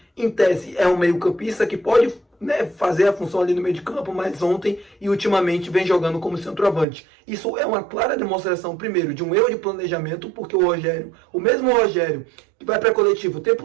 em tese é um meio campista que pode fazer a função ali no meio de campo, mas ontem e ultimamente vem jogando como centroavante. Isso é uma clara demonstração, primeiro, de um erro de planejamento, porque o Rogério, o mesmo Rogério que vai para a coletiva o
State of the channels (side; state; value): left; drops out; at 6.9 s